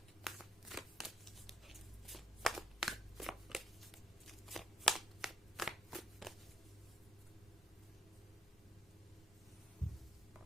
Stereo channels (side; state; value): both; normal; correlation 0.67